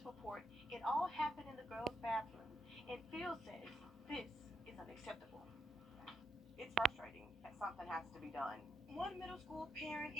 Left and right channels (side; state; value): both; normal; correlation 0.79